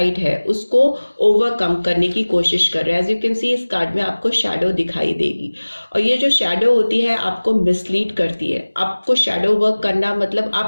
है उसको ओवरकम करने की कोशिश कर रहे हैं। एज यू कैन सी इस कार्ड में आपको शैडो दिखाई देगी, और ये जो शैडो होती है आपको मिसलीड करती है। आपको शैडो वर्क करना मतलब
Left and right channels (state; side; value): inverted; both; correlation -1.00